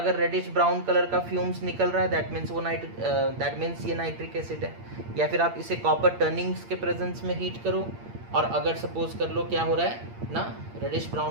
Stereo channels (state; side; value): late; left; 8.6 ms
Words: रेडिश ब्राउन कलर का फ्यूम्स निकल रहा है दैट मीन्स ये नाइट्रिक एसिड है। या फिर आप इसे कॉपर टर्निंग्स के प्रेजेंस में हीट करो, और अगर सपोज कर लो क्या हो रहा है ना, रेडिश